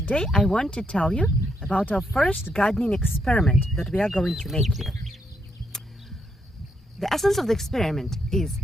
I want to tell you about our first gardening experiment that we are going to make here. The essence of the experiment is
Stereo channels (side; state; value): both; normal; correlation 0.78